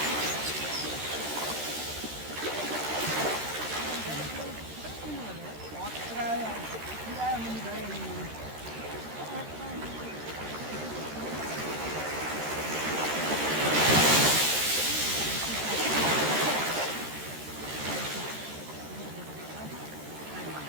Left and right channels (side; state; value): left; late; 13 ms